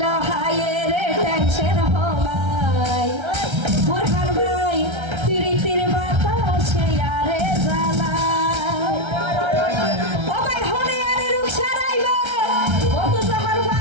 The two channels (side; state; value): left; late; 1.3 ms